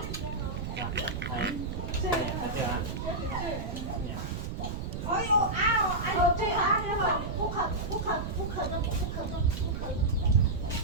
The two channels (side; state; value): right; noise; rumble, 5 dB below the sound